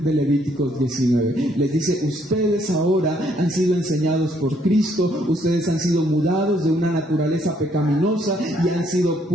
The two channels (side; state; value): both; normal; correlation 0.68